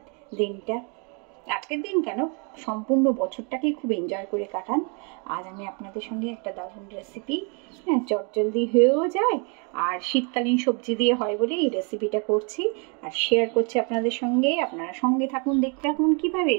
দিনটা। আজকের দিন কেন, সম্পূর্ণ বছরটাকেই খুব এনজয় করে কাটান। আজ আমি আপনাদের সঙ্গে একটা দারুণ রেসিপি, চটজলদি হয়েও যায় আর শীতকালীন সবজি দিয়ে হয় বলে এই রেসিপিটা করছি আর শেয়ার করছি আপনাদের সঙ্গে। আপনারা সঙ্গে থাকুন, দেখতে থাকুন কীভাবে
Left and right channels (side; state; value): left; quieter; 35.4 dB